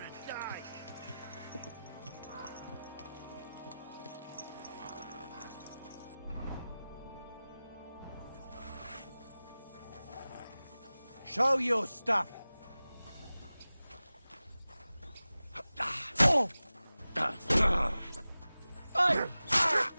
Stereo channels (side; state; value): both; inverted; correlation -0.97